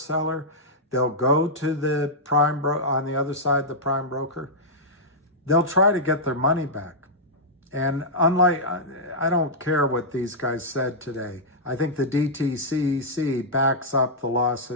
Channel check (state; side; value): normal; both; correlation -0.09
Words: They'll go to the prime on the other side, the prime broker. They'll try to get their money back. And unlike, I don't care what these guys said today. I think the DTCC backs up the